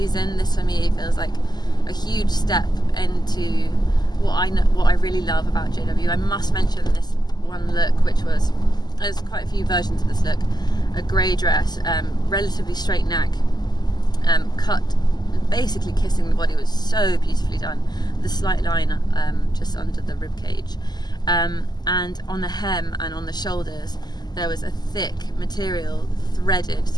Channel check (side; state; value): right; late; 0.20 ms